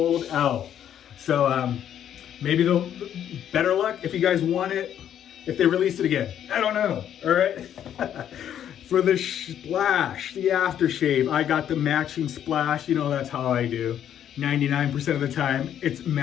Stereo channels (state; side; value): quieter; right; 10.0 dB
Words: out. So maybe they'll better luck if you guys want it, if they release it again. I don't know. All right. For the splash, the aftershave, I got the matching splash. You know, that's how I do. 99% of the time, it's